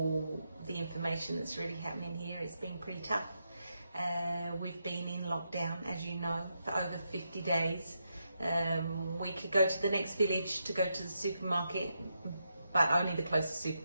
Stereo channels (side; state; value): both; inverted; correlation -0.84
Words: the information that's really happening here. It's been pretty tough. We've been in lockdown, as you know, for over 50 days. We could go to the next village to go to the supermarket, but only the closest